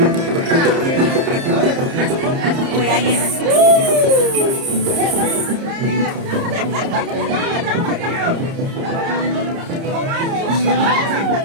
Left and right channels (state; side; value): late; left; 30 ms